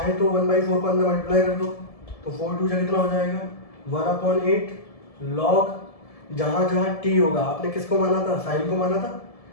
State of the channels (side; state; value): right; late; 1.7 ms